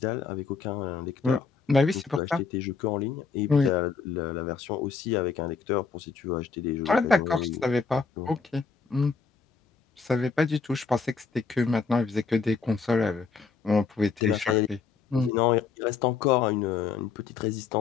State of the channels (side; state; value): right; quieter; 5.2 dB